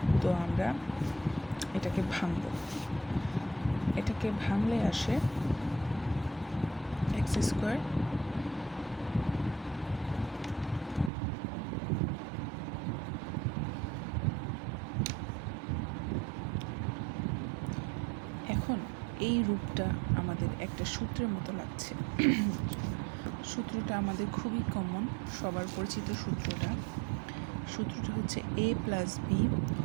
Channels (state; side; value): drops out; left; at 11.1 s